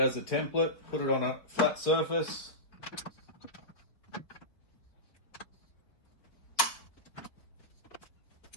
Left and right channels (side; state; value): right; late; 4.1 ms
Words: as a template. Put it on a flat surface.